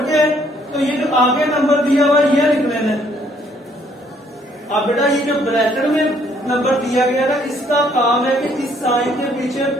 के तो ये जो आगे नंबर दिया हुआ ये लिख लेना है। अब बेटा ये जो ब्रैकेट में नंबर दिया गया ना, इसका काम है कि इस साइन के पीछे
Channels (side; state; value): both; normal; correlation 0.65